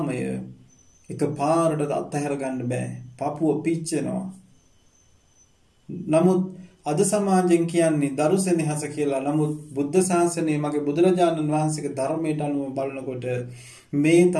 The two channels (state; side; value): identical; both; correlation 1.00